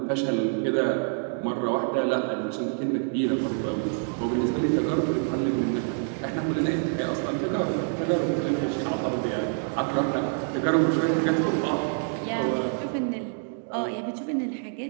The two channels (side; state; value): left; silent; 60 dB below the other